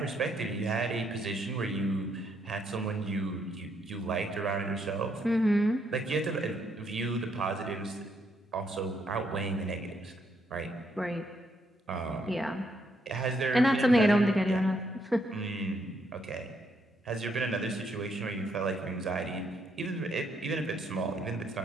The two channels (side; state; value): both; normal; correlation 0.74